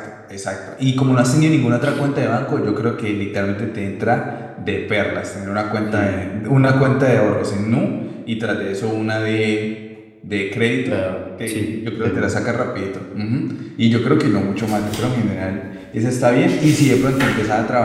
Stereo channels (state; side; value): identical; both; correlation 1.00